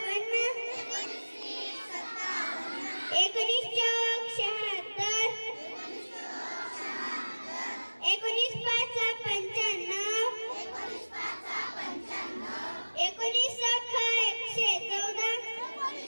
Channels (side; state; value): both; inverted; correlation -1.00